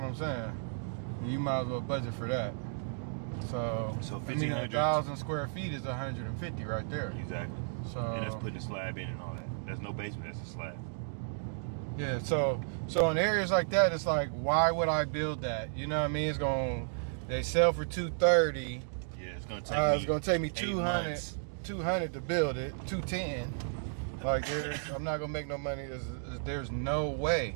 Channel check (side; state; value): left; silent; digital silence